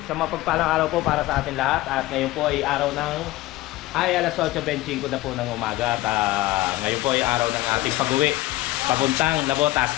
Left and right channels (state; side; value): quieter; right; 17.6 dB